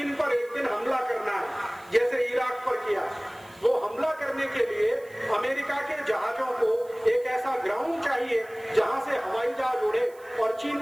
पर एक दिन हमला करना है, जैसे इराक पर किया। वो हमला करने के लिए अमेरिका के जहाजों को एक ऐसा ग्राउंड चाहिए जहां से हवाई जहाज उड़े और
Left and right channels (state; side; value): noise; right; hiss, 27 dB below the sound